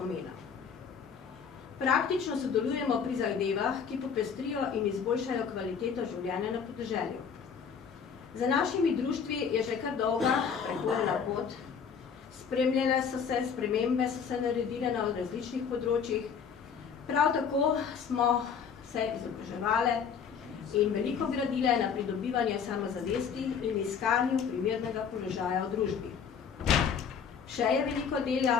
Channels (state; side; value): quieter; right; 6.7 dB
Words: Praktično sodelujemo pri zahtevah, ki popestrijo in izboljšajo kvaliteto življenja na podeželju. Za našimi društvi je že kar dolga prehodna pot. Spremljene so se, spremembe so se naredile na različnih področjih. Prav tako smo se izobraževali in veliko gradile na pridobivanje samozavesti in iskanju primernega položaja v družbi. Še je veliko